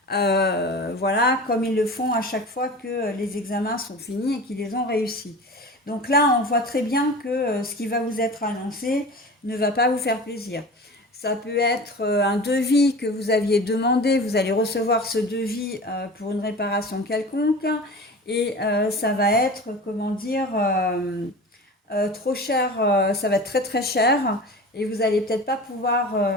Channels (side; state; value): both; normal; correlation 0.35